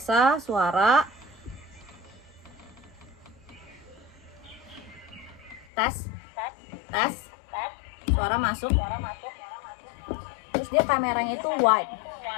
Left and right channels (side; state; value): right; drops out; at 5.7 s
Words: suara. Tes, suara masuk. Terus dia kameranya itu wide,